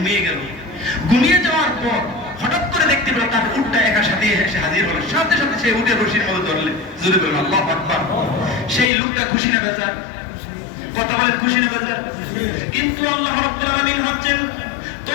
গেল। ঘুমিয়ে যাওয়ার পর হঠাৎ করে দেখতে পেল তার উটটা একা সাথে এসে হাজির হলো। সাথে সাথে সে উটের রশির মধ্যে ধরলে। জোরে বলুন আল্লাহু আকবার। সেই লোকটা খুশি না বেজার? কথা বলেন, খুশি না বেজার? কিন্তু আল্লাহ রাব্বুল আলামিন হচ্ছেন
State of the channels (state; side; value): drops out; right; at 8.9 s